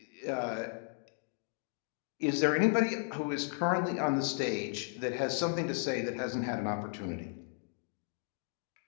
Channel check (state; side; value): silent; right; 54 dB below the other